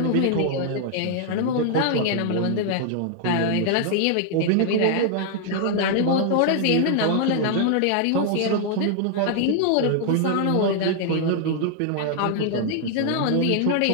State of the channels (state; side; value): different; both; correlation 0.00